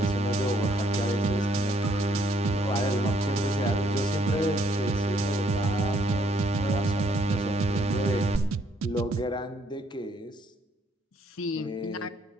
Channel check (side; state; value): both; normal; correlation 0.68